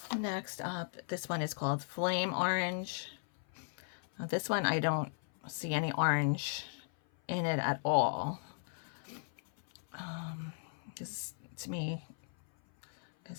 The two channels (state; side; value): silent; right; 53 dB below the other